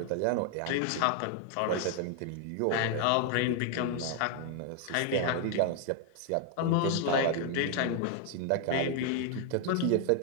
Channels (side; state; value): both; different; correlation 0.00